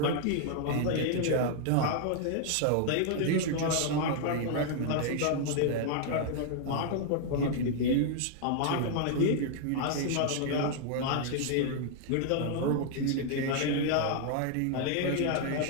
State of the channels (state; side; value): different; both; correlation -0.01